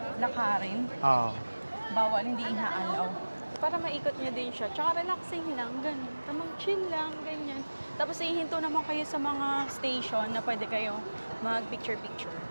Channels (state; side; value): inverted; both; correlation -1.00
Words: lakarin. Bawal, hindi inaalaw. So para maikot nyo din siya. Tsaka relaxing lang, ganun. Tamang chill lang, ganyan. Tapos ihinto naman kayo sa mga station na pwede kayo mag-picture-picture.